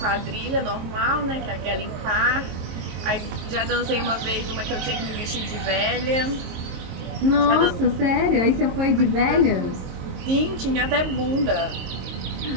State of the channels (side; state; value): left; late; 22 ms